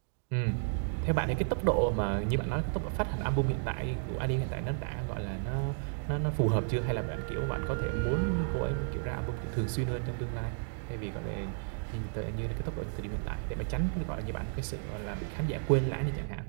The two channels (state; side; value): silent; left; digital silence